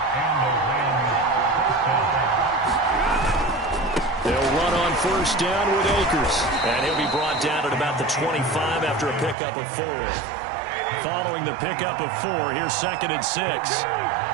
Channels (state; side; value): drops out; left; at 9.3 s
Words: They'll run on 1st down with Akers. And he'll be brought down at about the 25 after a pickup of 4. Following the pickup of 4, here's 2nd and 6.